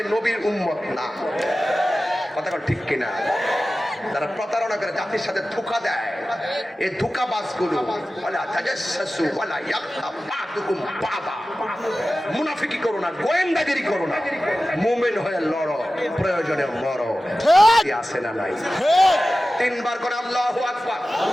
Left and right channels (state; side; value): normal; both; correlation 0.95